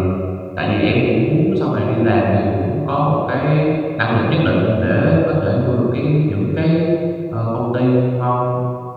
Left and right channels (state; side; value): identical; both; correlation 1.00